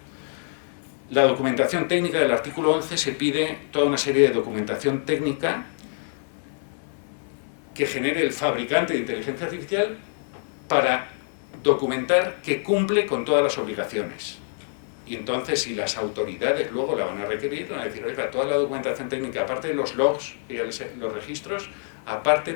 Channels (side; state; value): right; silent; digital silence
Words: la documentación técnica del artículo 11 se pide toda una serie de documentación técnica que genere el fabricante de inteligencia artificial para documentar que cumple con todas las obligaciones. Y entonces, si las autoridades luego la van a requerir, van a decir, oiga, toda la documentación técnica, aparte de los logs, los registros, aparte